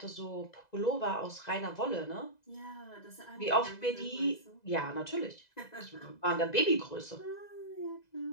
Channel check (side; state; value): right; late; 2.0 ms